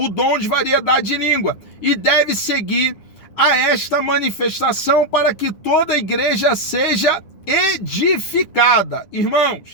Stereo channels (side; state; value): right; late; 9.8 ms